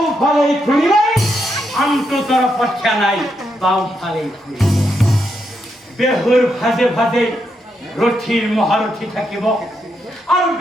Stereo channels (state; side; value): normal; both; correlation 0.81